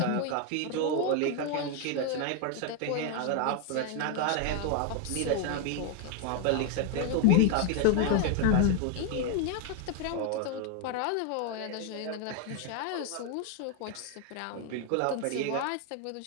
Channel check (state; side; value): different; both; correlation 0.01